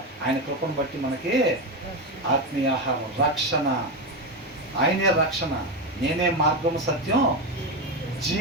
ఆయన కృపను బట్టి మనకి ఆత్మీయ ఆహారం, రక్షణ. ఆయనే రక్షణ, నేనే మార్గము సత్యం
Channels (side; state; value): both; normal; correlation 0.13